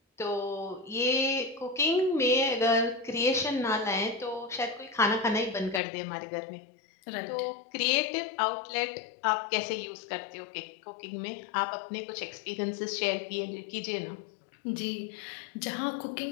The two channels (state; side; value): drops out; right; at 5.8 s